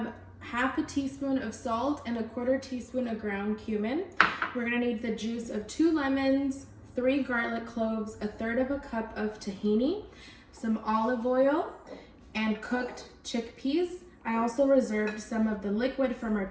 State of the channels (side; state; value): both; identical; correlation 1.00